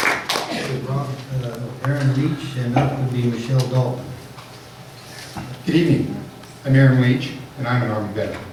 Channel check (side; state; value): both; identical; correlation 1.00